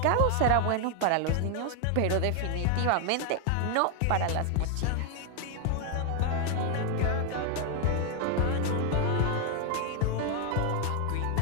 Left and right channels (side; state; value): both; different; correlation 0.00